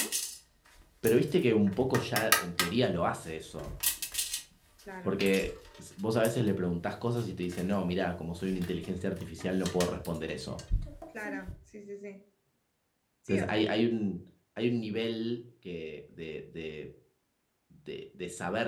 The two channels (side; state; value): both; identical; correlation 1.00